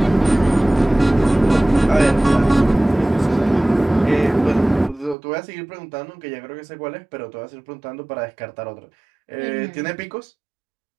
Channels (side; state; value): left; drops out; at 5.2 s